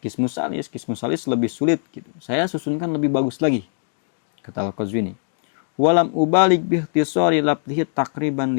Qismus Salis. Qismus Salis lebih sulit gitu. Saya susunkan lebih bagus lagi, kata Al-Qazwini. Walam ubalik bihtisari labdihi takriban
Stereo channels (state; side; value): silent; right; digital silence